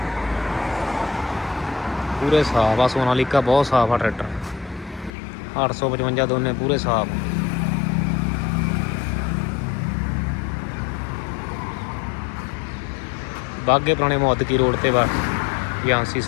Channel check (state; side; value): drops out; right; at 5.1 s